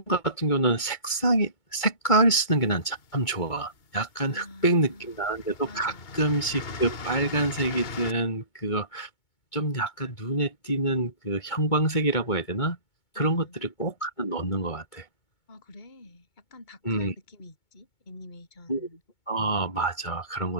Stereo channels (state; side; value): late; right; 2.2 ms